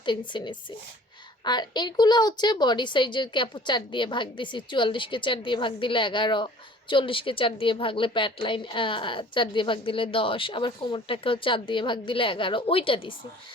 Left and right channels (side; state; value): both; normal; correlation 0.50